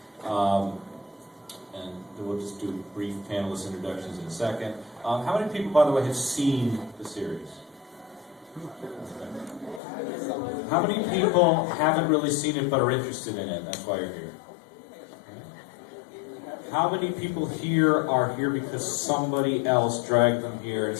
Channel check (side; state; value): right; drops out; at 9.8 s